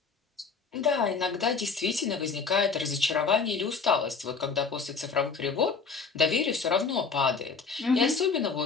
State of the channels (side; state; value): right; quieter; 5.0 dB